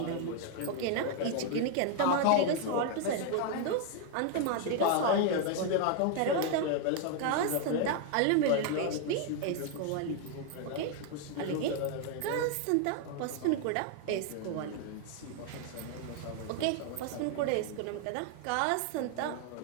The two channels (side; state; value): both; different; correlation 0.00